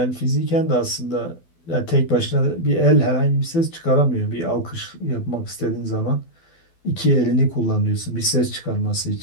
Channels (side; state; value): right; late; 12 ms